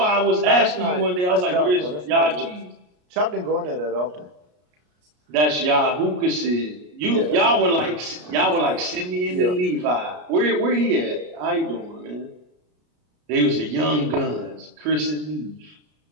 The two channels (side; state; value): left; late; 33 ms